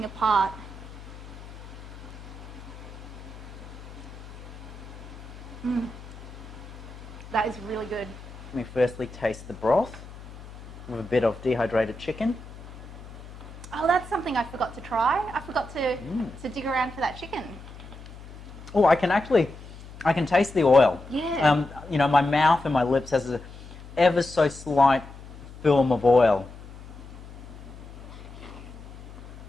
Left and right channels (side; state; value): left; noise; hum, 15 dB below the sound